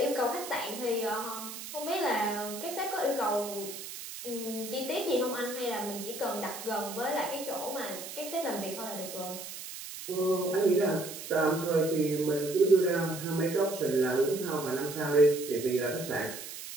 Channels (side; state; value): right; noise; hiss, 10 dB below the sound